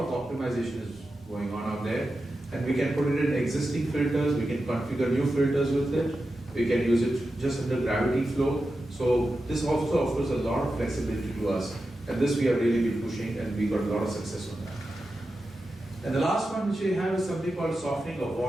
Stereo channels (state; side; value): normal; both; correlation 0.91